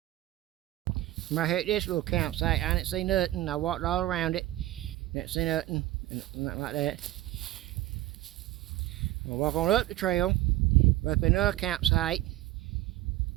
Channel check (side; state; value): left; quieter; 15.9 dB